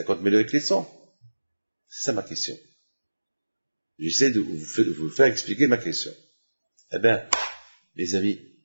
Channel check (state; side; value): inverted; both; correlation -1.00